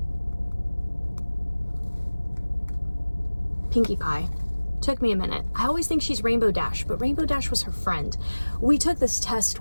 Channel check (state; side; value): inverted; both; correlation -1.00